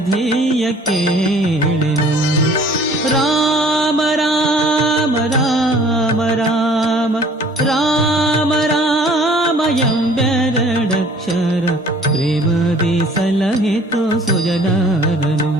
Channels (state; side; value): normal; both; correlation 0.53